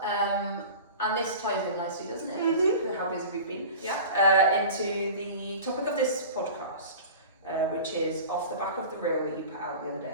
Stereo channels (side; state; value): both; inverted; correlation -0.36